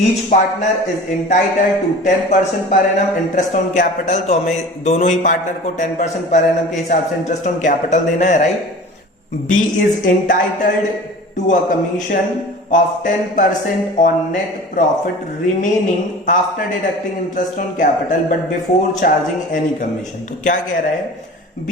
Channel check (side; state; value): both; normal; correlation 0.39